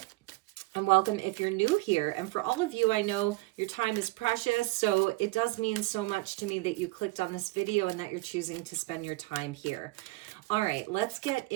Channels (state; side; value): quieter; left; 21.7 dB